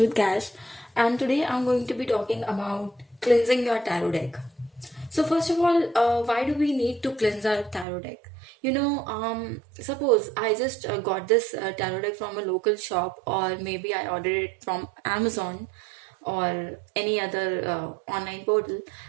Cash, and today I'm going to be talking about cleansing your tarot deck. So first of all, why do we need to cleanse our tarot deck? Suppose I just got this tarot deck from a local shop, or maybe I ordered it from Amazon or any other online portal.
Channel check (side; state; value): left; drops out; at 7.9 s